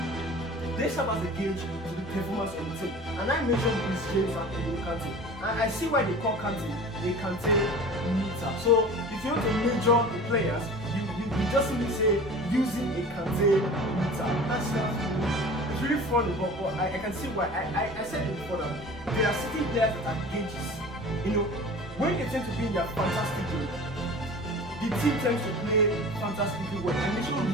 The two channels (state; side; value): normal; both; correlation 0.39